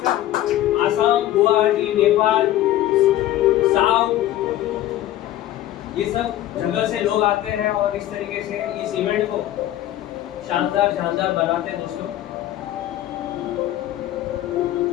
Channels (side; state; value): right; quieter; 13.5 dB